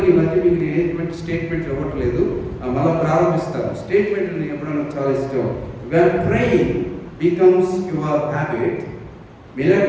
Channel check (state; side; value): identical; both; correlation 1.00